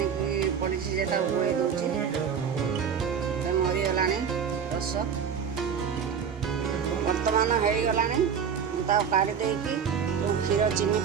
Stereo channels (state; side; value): quieter; left; 7.2 dB